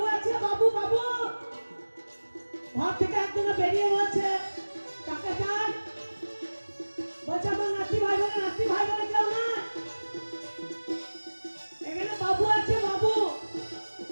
আছে বাবু বাবু ঘর থেকে একজন বেরিয়ে বলছে কাকে চাই বলছে আমার নাতি ভাই বোনে কেউ না এখানে বাবু আছে বাবু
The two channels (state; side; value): inverted; both; correlation -1.00